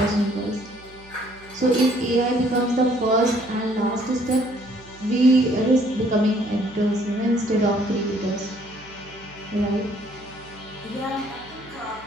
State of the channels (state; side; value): noise; right; hum, 23 dB below the sound